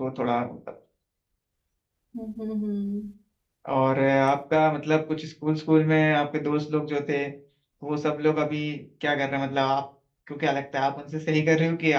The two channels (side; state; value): both; identical; correlation 1.00